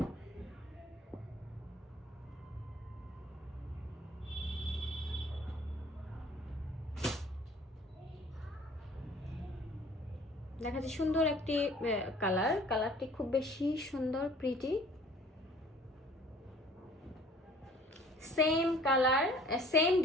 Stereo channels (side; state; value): both; normal; correlation 0.52